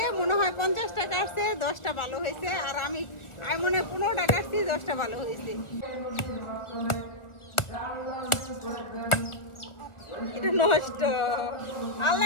মনে হয় 50টা কাটছে, 10টা ভালো হয়েছে। আর আমি মনে হয় 15টা কাটছি, 10টা ভালো হয়েছে। এটা নষ্ট,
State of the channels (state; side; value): late; right; 1.4 ms